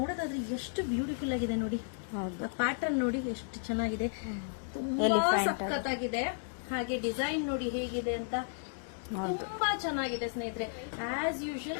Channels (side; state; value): right; silent; digital silence